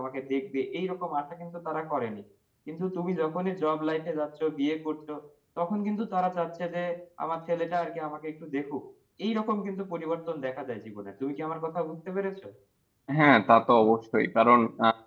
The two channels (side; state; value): both; identical; correlation 1.00